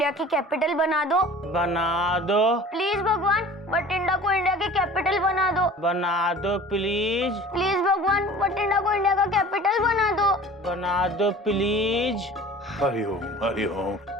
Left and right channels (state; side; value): normal; both; correlation 0.43